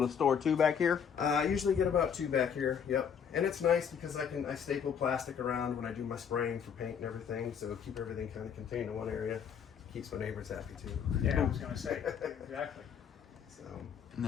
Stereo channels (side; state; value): right; quieter; 7.5 dB